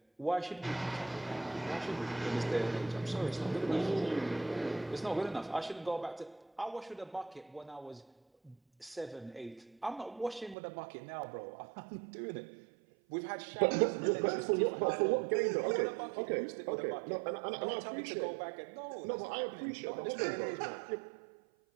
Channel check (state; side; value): drops out; left; at 10.6 s